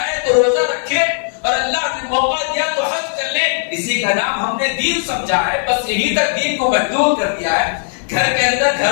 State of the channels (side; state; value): right; silent; digital silence